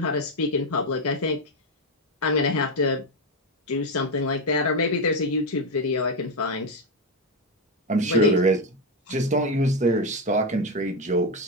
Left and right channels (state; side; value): normal; both; correlation 0.08